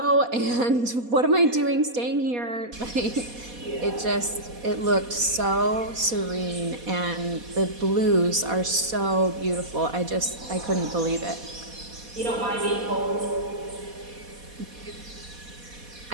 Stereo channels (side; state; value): left; late; 4.2 ms